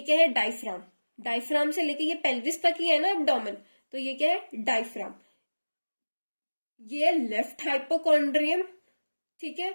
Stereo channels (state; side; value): inverted; both; correlation -1.00